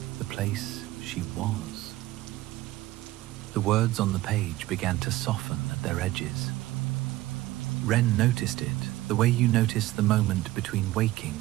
the place she was. The words on the page began to soften at their edges. Wren noticed it the way you notice the moment between waking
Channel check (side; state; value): left; quieter; 17.0 dB